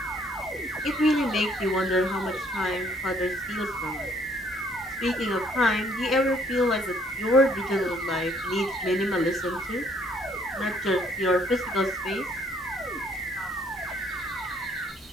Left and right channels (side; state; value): both; normal; correlation 0.64